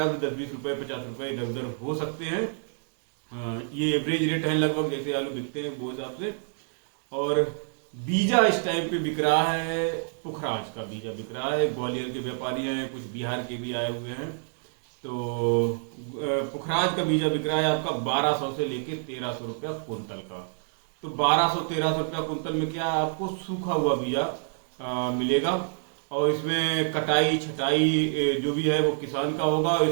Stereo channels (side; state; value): left; silent; digital silence